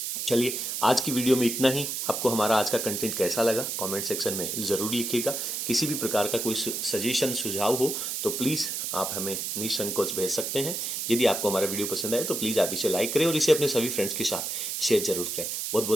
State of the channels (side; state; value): right; noise; hiss, 3 dB below the sound